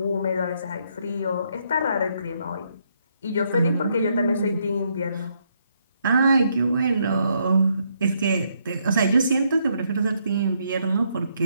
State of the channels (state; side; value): inverted; both; correlation -0.74